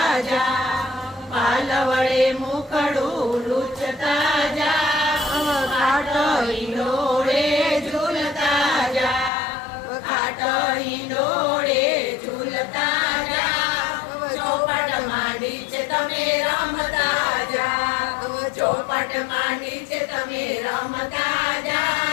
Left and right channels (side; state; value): right; drops out; at 9.3 s